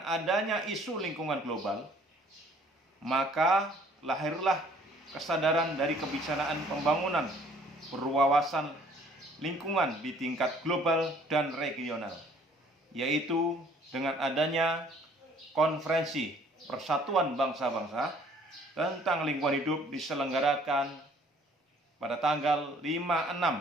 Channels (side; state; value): both; normal; correlation 0.58